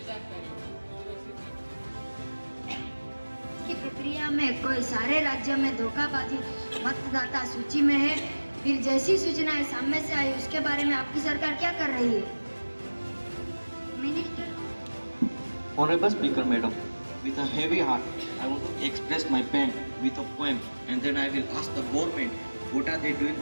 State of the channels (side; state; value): both; inverted; correlation -1.00